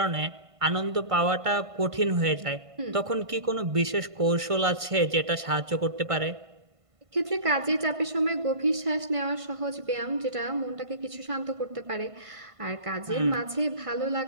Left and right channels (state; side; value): late; left; 1.5 ms